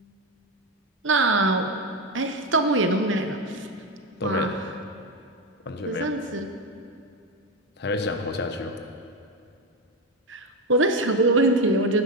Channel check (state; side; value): normal; both; correlation 0.14